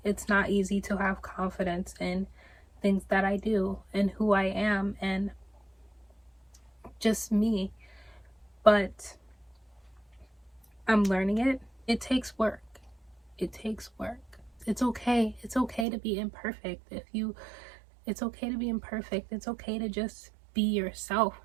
it's not easy to have confidence in things that I do and who I am and just me. But I'm learning it. It takes work. It takes work. It's okay. It's okay to be imperfect. It's okay to be imperfect. It's okay to just be yourself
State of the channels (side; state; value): left; drops out; at 15.9 s